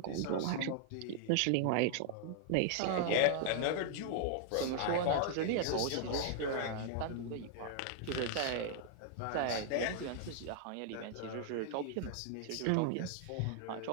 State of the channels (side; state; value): both; different; correlation -0.01